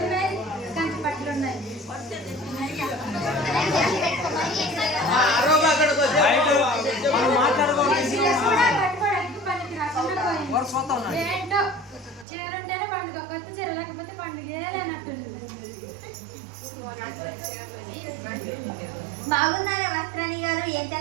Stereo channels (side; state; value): left; drops out; at 12.2 s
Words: ఉన్నాయి, కంచి పట్టులు ఉన్నాయి. ఏంటో చీర ఉంటేనే పండుగ, కొత్త చీర లేకపోతే పండుగ లేనట్టుంది. బాగున్నారా వస్త్రాణి గారు? ఏం